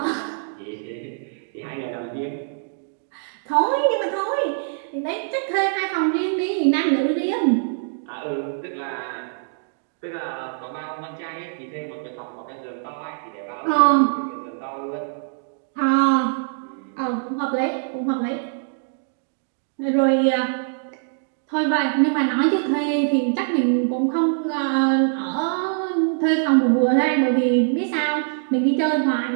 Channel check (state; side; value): silent; left; digital silence